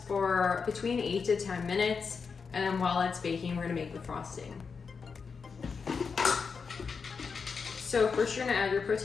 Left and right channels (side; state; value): right; quieter; 5.4 dB